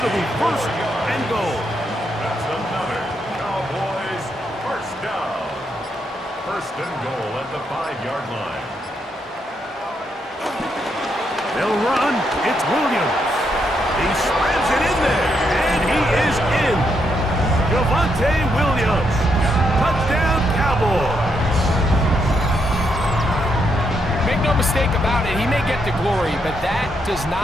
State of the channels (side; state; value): both; normal; correlation 0.78